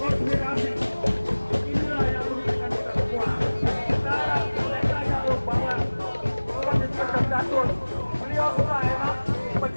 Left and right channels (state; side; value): inverted; both; correlation -1.00